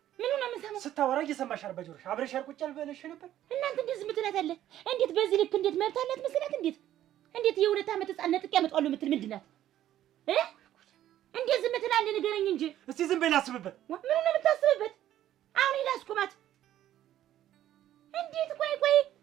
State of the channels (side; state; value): left; quieter; 12.4 dB